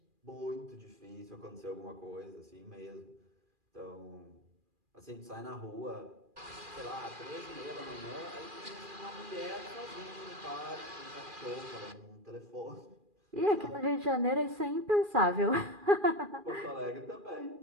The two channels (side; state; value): left; late; 2.4 ms